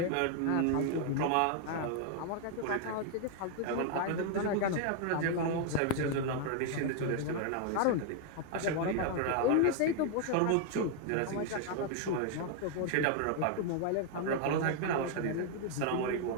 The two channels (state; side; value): different; both; correlation 0.00